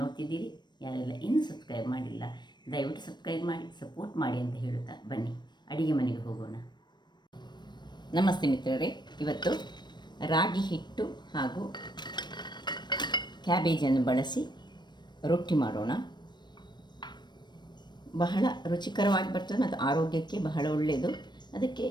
ನೋಡ್ತಿದ್ದೀರಿ, ಯಾರೆಲ್ಲ ಇನ್ನೂ ಸಬ್ಸ್ಕ್ರೈಬ್ ಮಾಡಿಲ್ಲ, ದಯವಿಟ್ಟು ಸಬ್ಸ್ಕ್ರೈಬ್ ಮಾಡಿ ಸಪೋರ್ಟ್ ಮಾಡಿ ಅಂತ ಹೇಳುತ್ತಾ ಬನ್ನಿ ಅಡಿಗೆ ಮನೆಗೆ ಹೋಗೋಣ. ನಮಸ್ತೆ ಮಿತ್ರರೇ, ಇವತ್ತು ರಾಗಿ ಹಿಟ್ಟು ಹಾಗೂ ಕ್ಯಾಬೇಜನ್ನು ಬಳಸಿ ರೊಟ್ಟಿ ಮಾಡೋಣ. ಬಹಳ ರುಚಿಕರವಾಗಿ ಬರ್ತದೆ ಮತ್ತು ಆರೋಗ್ಯಕ್ಕೆ ಬಹಳ ಒಳ್ಳೆಯದು. ಅದಕ್ಕೆ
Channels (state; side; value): late; right; 0.21 ms